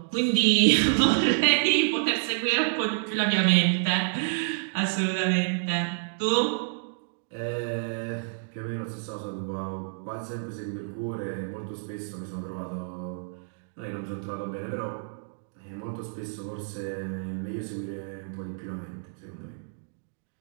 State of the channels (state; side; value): silent; left; digital silence